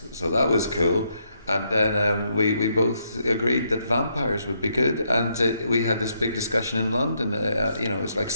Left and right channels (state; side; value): inverted; both; correlation -0.76